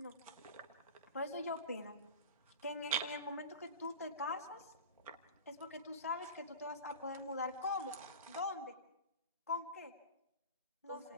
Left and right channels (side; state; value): both; inverted; correlation -0.30